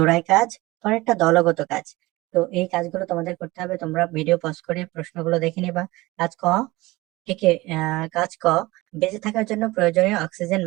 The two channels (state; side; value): quieter; left; 20.5 dB